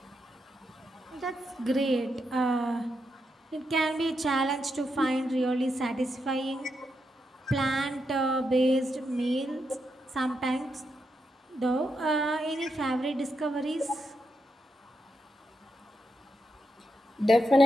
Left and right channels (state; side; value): normal; both; correlation 0.83